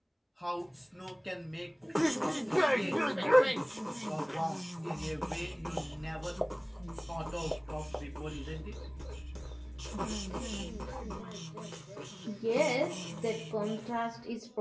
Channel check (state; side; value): identical; both; correlation 1.00